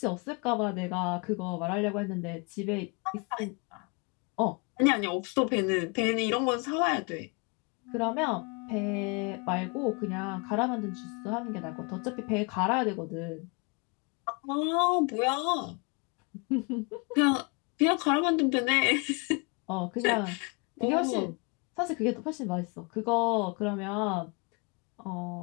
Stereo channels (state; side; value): quieter; right; 32.4 dB